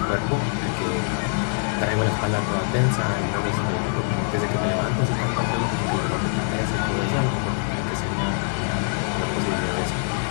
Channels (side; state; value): right; silent; digital silence